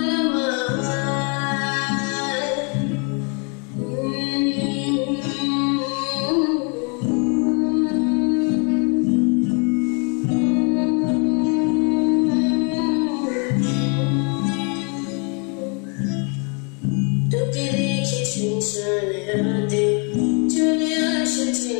তোকে দেখি শুনশানে রাতে চলে আসে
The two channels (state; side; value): quieter; right; 36.4 dB